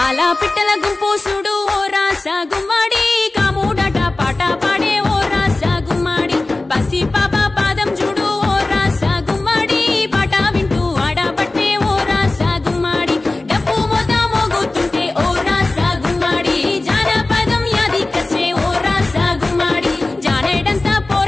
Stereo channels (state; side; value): quieter; right; 3.0 dB